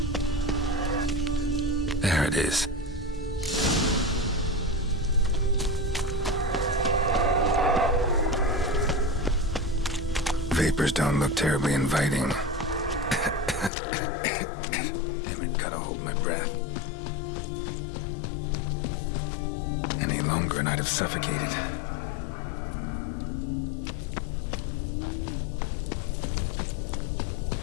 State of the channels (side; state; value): right; drops out; at 13.7 s